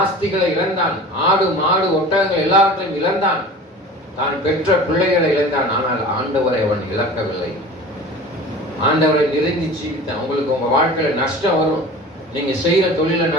ஆஸ்திகளை இழந்தான். ஆடு மாடு ஒட்டகங்கள் எல்லாவற்றையும் இழந்தான். தான் பெற்ற பிள்ளைகளை இழந்தான். ஆனால் ஆண்டவரை அவன் இழக்கவில்லை. ஆண்டவரை நெருங்கி ஜீவித்தான். உங்களுக்கு உங்க வாழ்க்கையில நஷ்டம் வரும். நீங்க செய்யற தொழில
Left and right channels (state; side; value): normal; both; correlation 0.39